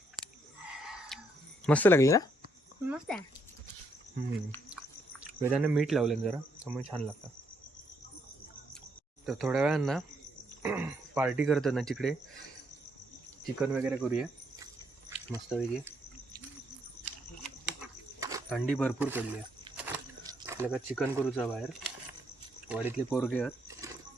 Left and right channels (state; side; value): normal; both; correlation 0.73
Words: मस्त लागली ना. मस्त आहे. वेदाने मीठ लावलं जरा, त्यामुळे छान लागतं. तर थोड्या वेळांना पार्टी करतात ना तिकडे, चिकन वगैरे करूया मस्तपैकी. थंडी भरपूर पडली आहे. आपल्याला चिकन करूचा बाहेर. वाडीतले पोरगे आहेत,